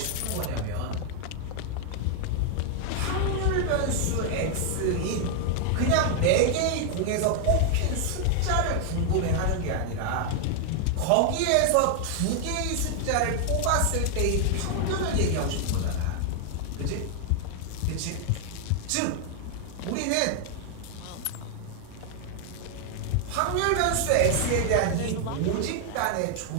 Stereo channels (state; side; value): different; both; correlation 0.00